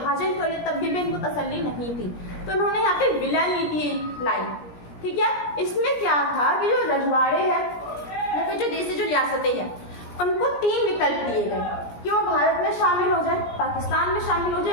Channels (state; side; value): late; right; 17 ms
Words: कर लिया, तब भी इनको तसल्ली नहीं थी, तो उन्होंने यहाँ पे विलय नीति लाई, ठीक है। इसमें क्या था कि जो रजवाड़े हैं या फिर जो देश जो रियासतें हैं उनको 3 विकल्प दिए गए कि वो भारत में शामिल हो जाए, पाकिस्तान में शामिल हो